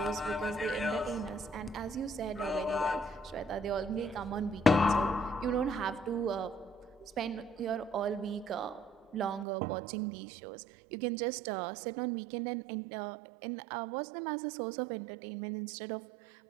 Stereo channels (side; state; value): left; drops out; at 9.5 s